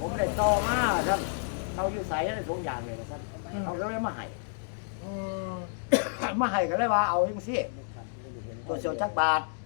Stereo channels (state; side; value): silent; right; digital silence